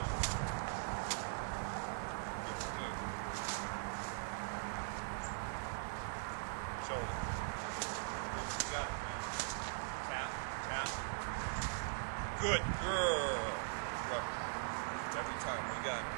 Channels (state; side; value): silent; left; 50 dB below the other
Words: Shoulder. You got it, man. Tap, tap. Good girl. Rubber. Every time. We got it